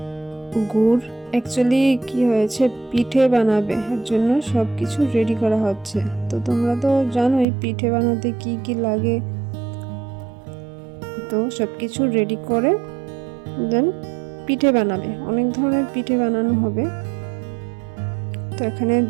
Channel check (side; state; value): left; drops out; at 7.5 s